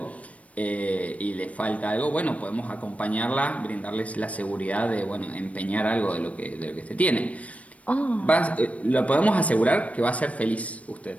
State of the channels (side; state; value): right; late; 0.066 ms